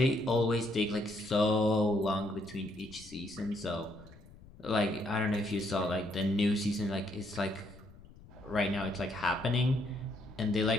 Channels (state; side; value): noise; left; rumble, 21 dB below the sound